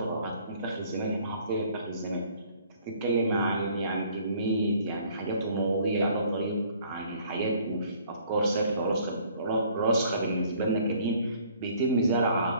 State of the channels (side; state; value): both; inverted; correlation -0.58